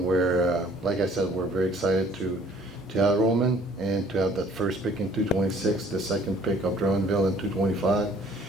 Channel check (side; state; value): both; normal; correlation 0.56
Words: we're, like I said, we're very excited to have Roman and to have that first pick in 226, the second pick of Drummondville in 225,